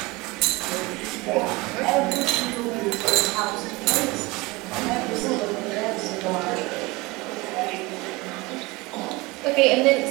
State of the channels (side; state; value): left; quieter; 23.3 dB